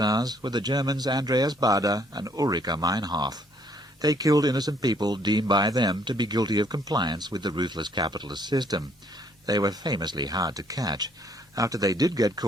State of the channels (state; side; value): normal; both; correlation 0.65